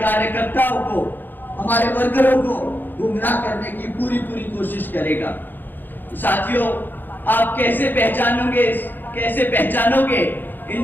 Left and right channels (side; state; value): right; late; 0.090 ms